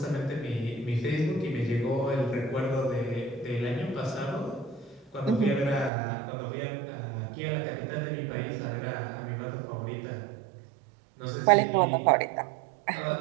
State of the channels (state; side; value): drops out; left; at 5.9 s